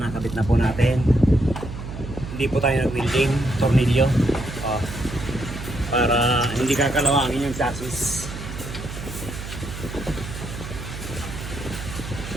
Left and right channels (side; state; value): right; noise; hum, 9 dB below the sound